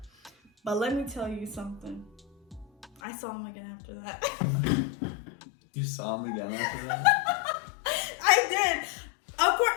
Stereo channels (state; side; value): drops out; right; at 3.0 s